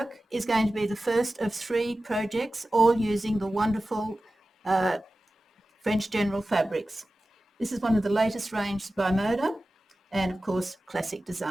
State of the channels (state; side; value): normal; both; correlation 0.95